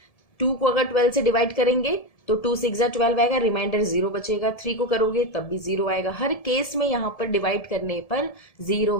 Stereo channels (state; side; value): late; right; 1.7 ms